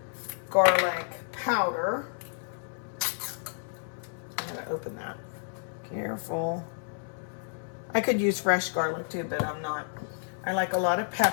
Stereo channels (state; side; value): silent; right; 58 dB below the other